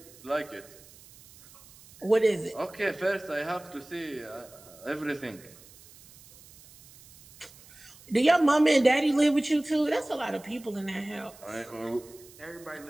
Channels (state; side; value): noise; right; hiss, 23 dB below the sound